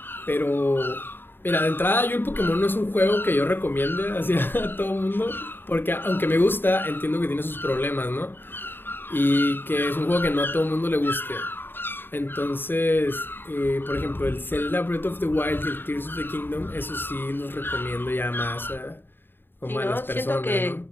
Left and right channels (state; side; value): late; right; 0.098 ms